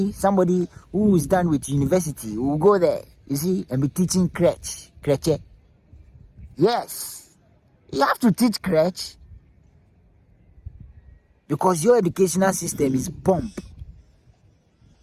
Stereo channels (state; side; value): identical; both; correlation 1.00